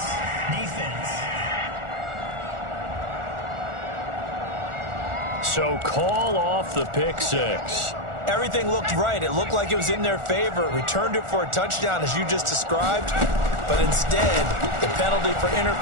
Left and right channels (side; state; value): left; late; 1.4 ms